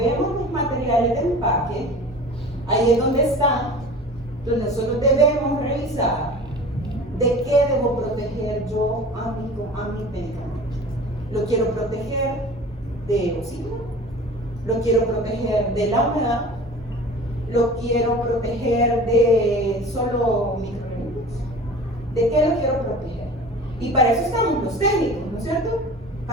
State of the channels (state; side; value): normal; both; correlation 0.40